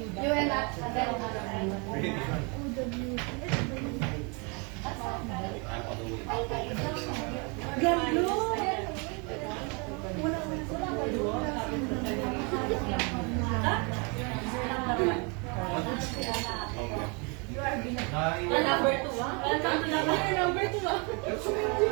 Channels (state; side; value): quieter; left; 32.8 dB